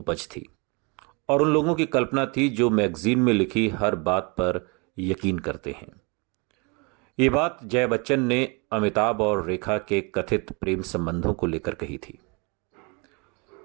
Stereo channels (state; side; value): quieter; left; 30.4 dB